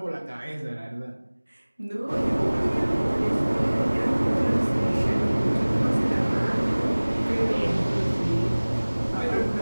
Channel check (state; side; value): inverted; both; correlation -1.00